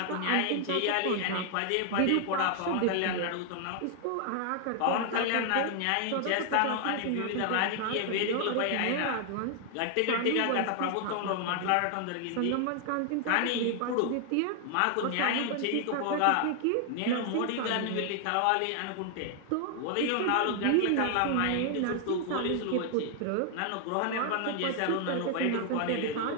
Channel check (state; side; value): different; both; correlation 0.00